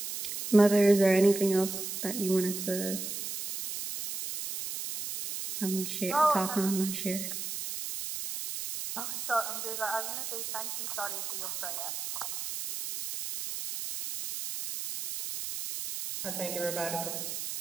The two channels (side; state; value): right; noise; hiss, 6 dB below the sound